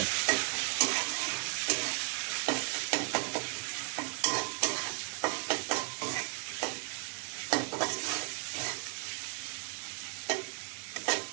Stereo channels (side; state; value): left; quieter; 35.5 dB